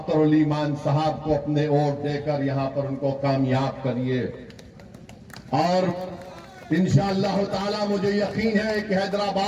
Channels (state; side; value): identical; both; correlation 1.00